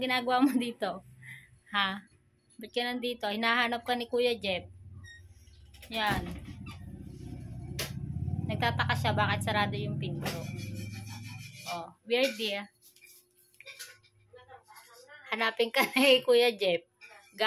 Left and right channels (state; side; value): identical; both; correlation 1.00